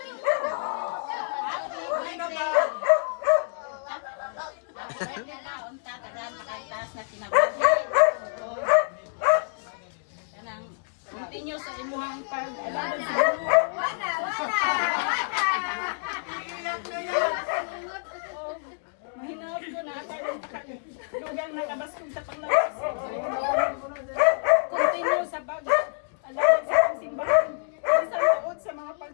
Continue sa imuhang pag-alaman sa Mahinaw ko na lugang nakabaskong sa panglawas. Continue sa pag-alaman sa simbahan. Isang taon sa mga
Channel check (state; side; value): silent; right; digital silence